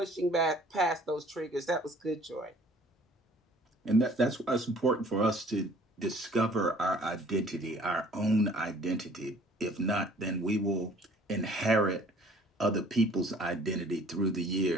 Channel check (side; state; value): both; normal; correlation 0.54